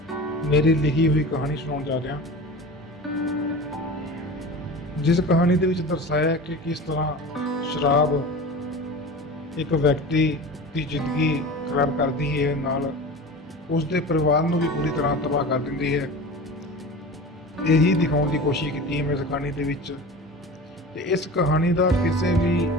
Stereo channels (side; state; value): both; normal; correlation 0.34